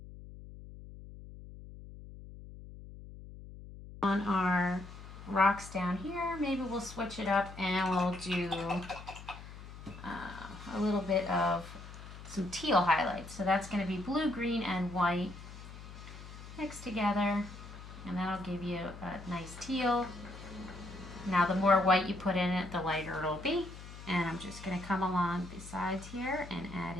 On our rocks down here, maybe we'll switch it up and we'll do a little bit of some teal highlights. So that's going to be blue, green, and white mixed together, and that'll give you a nice teal. Now the more white you put in it, the lighter it'll be. And I'm just going to come along the sides here and add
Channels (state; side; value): noise; left; hum, 14 dB below the sound